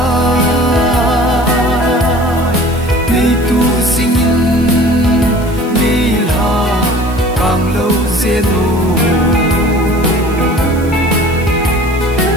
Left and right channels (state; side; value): noise; right; hiss, 20 dB below the sound